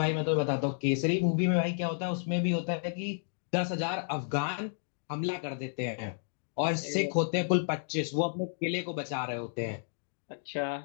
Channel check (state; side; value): silent; right; digital silence